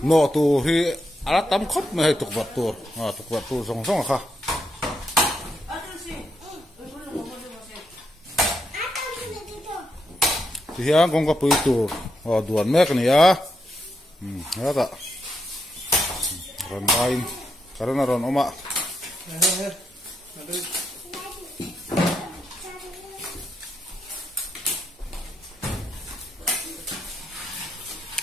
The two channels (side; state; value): both; normal; correlation 0.81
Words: no tu hi alat tam khop me hay tuk vật tur song song kha thì hiện con có bự tur duan mek ni ya ada ron bain karena ron oma